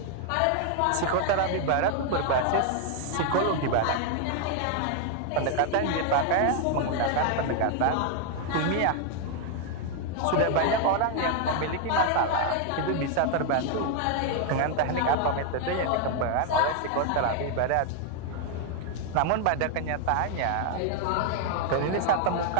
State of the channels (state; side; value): different; both; correlation 0.00